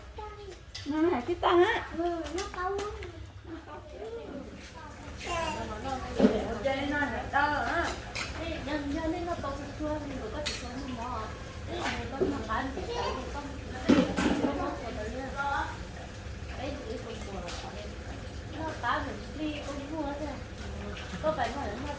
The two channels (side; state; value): both; identical; correlation 1.00